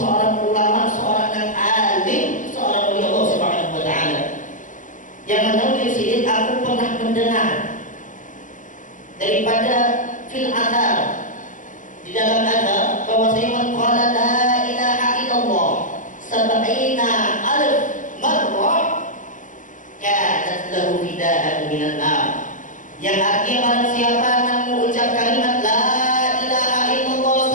ulama, seorang yang alim, seorang wali Allah Subhanahu wa taala. Yang menulis ini aku pernah mendengar daripada fil athar, di dalam athar bahwasanya man qala la ilaha illallah sab'ina alf marrah kanat lahu fidaan minan nar. Yang artinya barang siapa yang mengucap kalimat la ilaha illallah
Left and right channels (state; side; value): late; right; 0.37 ms